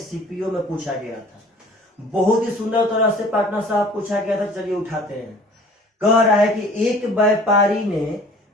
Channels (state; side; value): normal; both; correlation 0.49